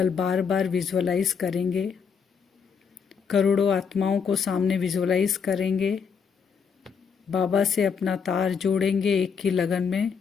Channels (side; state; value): right; quieter; 6.3 dB